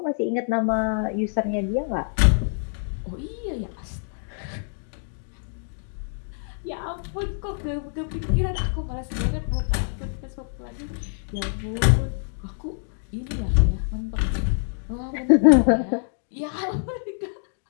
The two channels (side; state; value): right; silent; digital silence